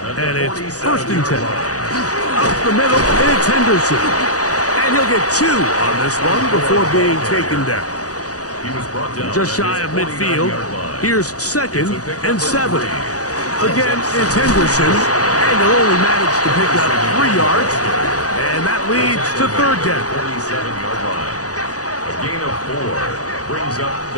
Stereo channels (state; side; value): late; right; 0.67 ms